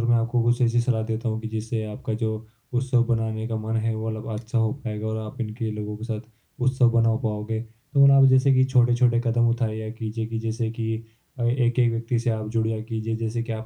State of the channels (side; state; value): both; identical; correlation 1.00